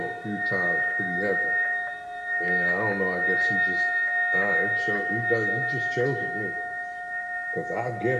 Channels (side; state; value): both; identical; correlation 1.00